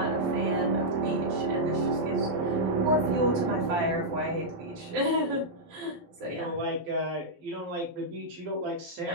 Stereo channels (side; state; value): left; late; 12 ms